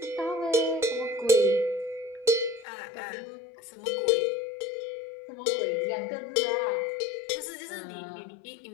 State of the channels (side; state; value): right; drops out; at 2.7 s